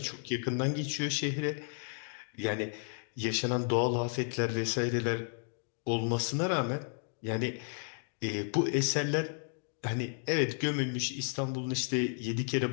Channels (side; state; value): right; silent; 56 dB below the other